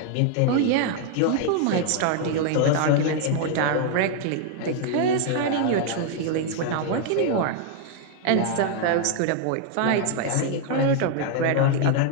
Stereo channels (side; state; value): both; different; correlation 0.00